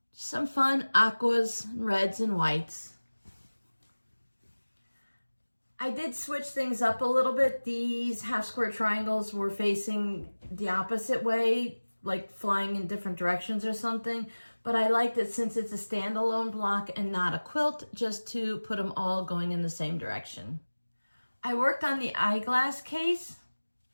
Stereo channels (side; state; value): both; inverted; correlation -1.00